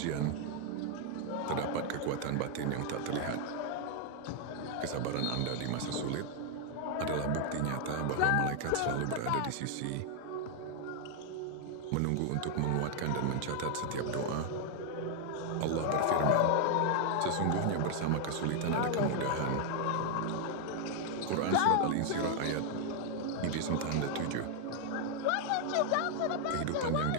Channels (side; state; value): both; different; correlation 0.00